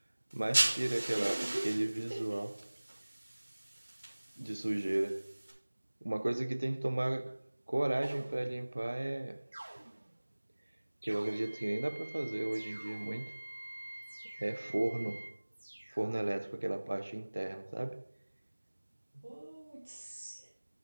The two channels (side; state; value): both; inverted; correlation -1.00